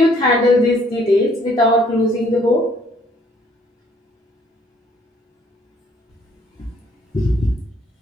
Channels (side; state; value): both; normal; correlation 0.63